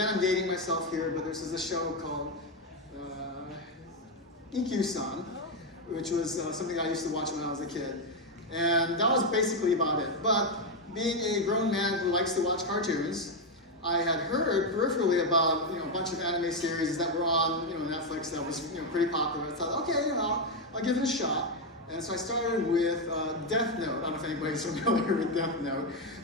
I'm dating myself here, but there's this show called EQ-san, which was something I used to watch when I was a kid. And that was basically about it. But being a grown man who likes to watch cartoons, I had heard peripherally about a bunch of anime series that were on Netflix that was pretty popular. I thought, okay, I'll give it a shot. And so I started with Death Note. I don't know if anybody's familiar with Death Note,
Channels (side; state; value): both; normal; correlation 0.05